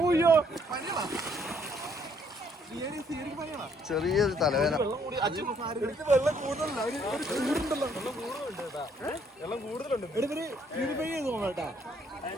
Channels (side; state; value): both; normal; correlation 0.66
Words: ചെറിയൊരു തലവേദന. വെള്ളം കൂടുതലുണ്ട്.